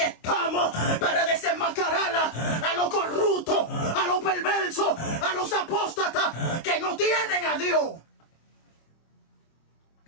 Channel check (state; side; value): late; right; 25 ms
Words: para desenmascarar a los corruptos, a los perversos, a los apóstatas que no tienen a Dios.